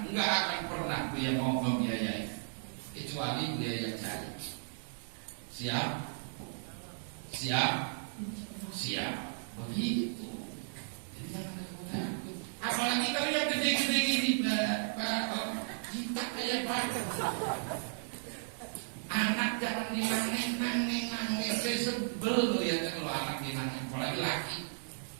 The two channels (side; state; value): left; silent; digital silence